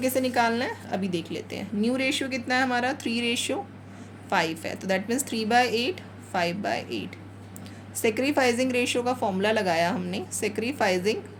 निकालना है, अभी देख लेते हैं। न्यू रेशियो कितना है हमारा, 3:5 है, तो दैट मीन्स 3/8 5/8। सेक्रीफाइजिंग रेशियो का फॉर्मूला लगाया हमने, सेक्रीफाइजिंग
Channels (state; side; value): identical; both; correlation 1.00